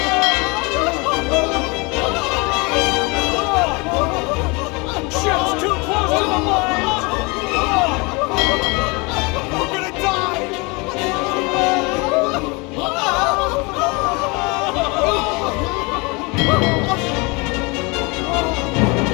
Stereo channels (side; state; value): right; quieter; 28.0 dB